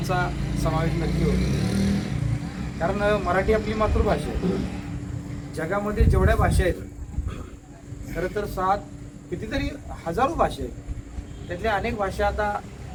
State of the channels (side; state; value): both; identical; correlation 1.00